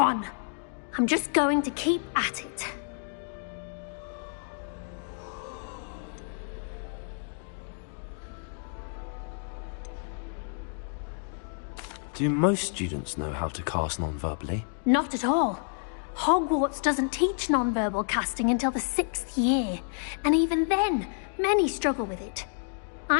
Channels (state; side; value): silent; right; 58 dB below the other